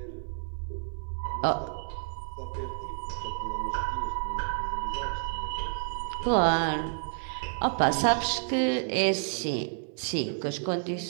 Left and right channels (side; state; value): left; silent; digital silence